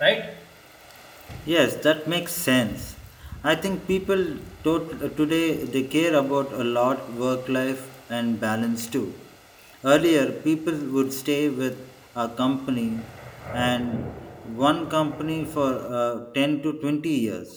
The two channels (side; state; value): both; identical; correlation 1.00